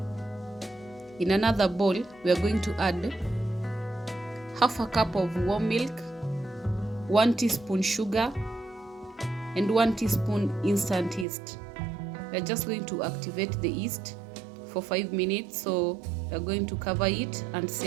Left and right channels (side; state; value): left; drops out; at 11.2 s